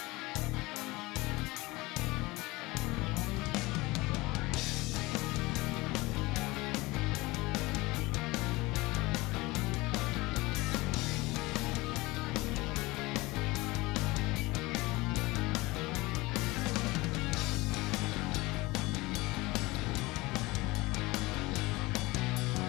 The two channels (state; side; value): quieter; right; 21.8 dB